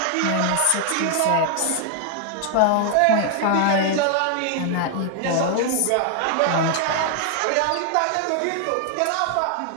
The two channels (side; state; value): both; different; correlation 0.00